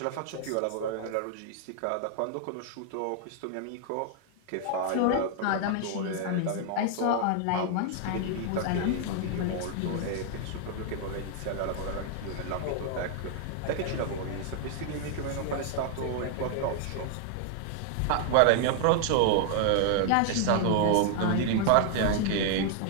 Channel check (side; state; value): both; different; correlation 0.00